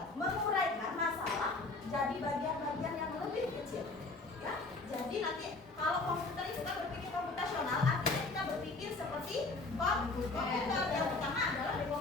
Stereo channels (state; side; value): quieter; right; 3.4 dB